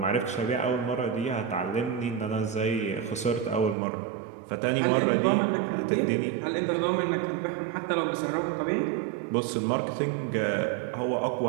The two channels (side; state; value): left; drops out; at 3.8 s